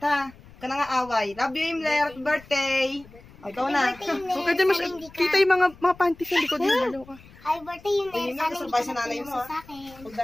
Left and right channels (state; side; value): noise; left; rumble, 23 dB below the sound